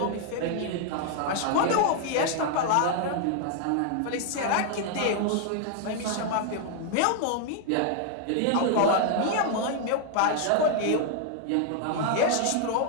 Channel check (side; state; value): both; different; correlation 0.00